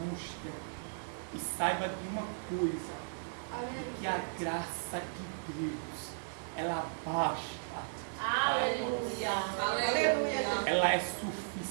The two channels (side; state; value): left; silent; digital silence